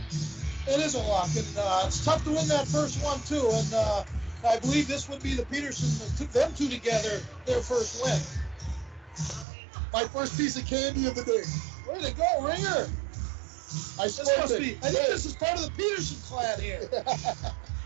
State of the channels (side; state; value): left; drops out; at 9.5 s